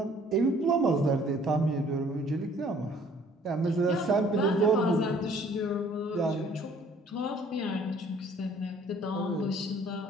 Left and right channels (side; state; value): both; normal; correlation 0.57